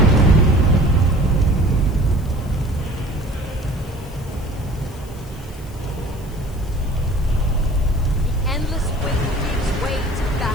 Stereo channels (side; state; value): left; noise; hiss, 23 dB below the sound